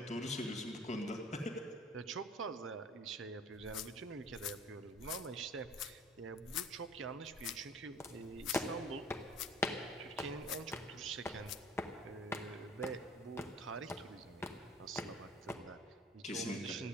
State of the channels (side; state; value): both; normal; correlation 0.49